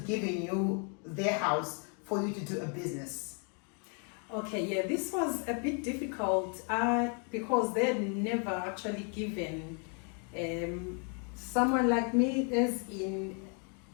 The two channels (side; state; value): right; quieter; 39.6 dB